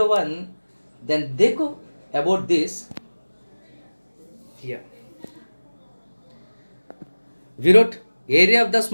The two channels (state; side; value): inverted; both; correlation -1.00